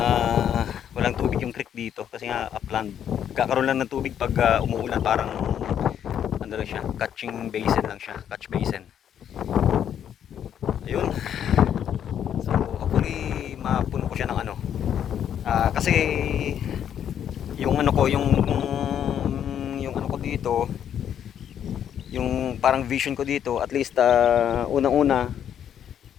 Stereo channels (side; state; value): right; quieter; 9.4 dB